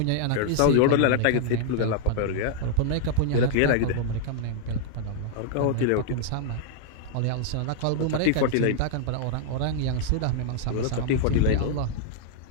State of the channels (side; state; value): both; different; correlation -0.01